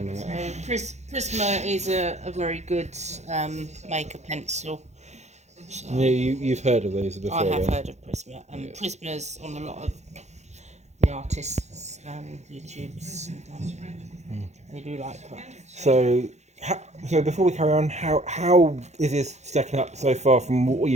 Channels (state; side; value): late; left; 0.33 ms